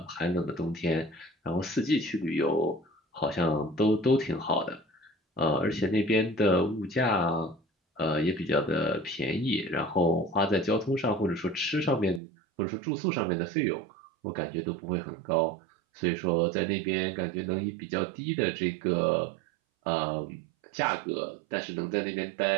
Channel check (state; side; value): drops out; left; at 12.2 s